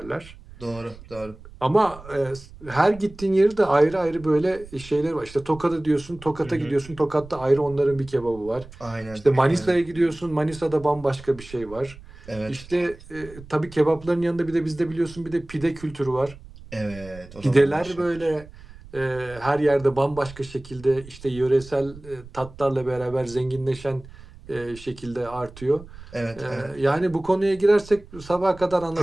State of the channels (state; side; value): noise; right; rumble, 19 dB below the sound